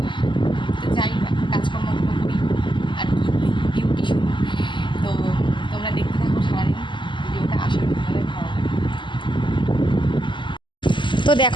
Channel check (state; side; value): late; right; 0.23 ms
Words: তো যাই কাজকর্মগুলো করি আর কি, ডিউটি শুরু। তো তোমরা দেখতে থাকো সারাদিন ভিডিওটা, আশা করি তোমাদের ভালো লাগে। তো